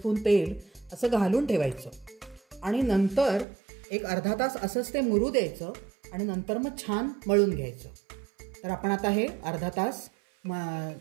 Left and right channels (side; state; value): left; drops out; at 3.5 s